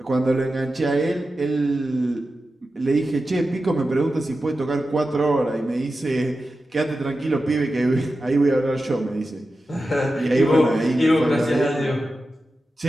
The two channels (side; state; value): both; normal; correlation 0.92